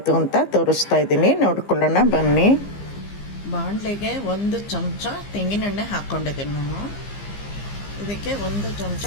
ಅಂತ ತೋರಿಸ್ತಾ ಇದ್ದೀನಿ, ನೋಡ್ಕೊಳ್ಳೋಣ ಬನ್ನಿ. ಬಾಣಲೆಗೆ 1 ಚಮಚ ತೆಂಗಿನೆಣ್ಣೆ ಹಾಕ್ಕೊಂಡಿದ್ದೀನಿ ನಾನು. ಇದಕ್ಕೆ 1 ಚಮಚ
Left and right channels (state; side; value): late; right; 15 ms